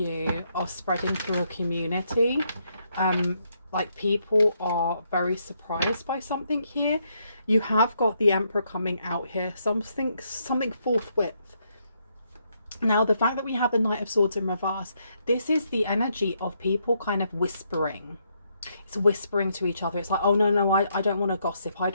are spreading through a community. Like people are very surprised by something here. You have got the Emperor coming out here, something forthwith. Now, the fact that we have the Knight of Swords in reverse, this is the energy of people kind of whispering. It's whispering to each other. It's like, oh, no, I don't want to gossip. I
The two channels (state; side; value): inverted; both; correlation -0.76